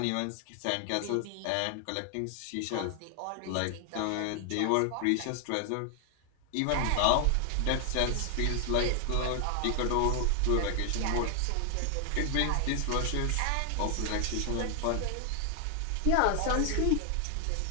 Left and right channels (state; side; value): different; both; correlation 0.00